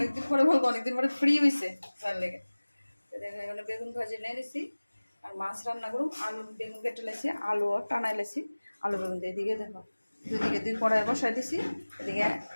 পরে বলবো অনেকদিন পরে ফ্রি হয়েছে তার লেগে। তো দেখো এখানে বেগুন ভাজি নিয়ে নিছি। আর মাছ রান্না করুন, আলু বেগুন কেটে লাইছি, আলুও টানাই লাইছি। আলু বেগুন দিয়ে এদিকে দেখো দুদিকে 2 কড়াই বসাই দিছি। এদিকে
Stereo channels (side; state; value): both; inverted; correlation -1.00